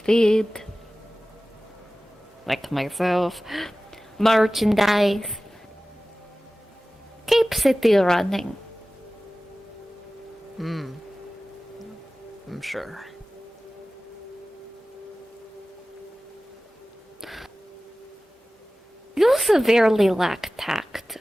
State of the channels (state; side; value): normal; both; correlation 0.97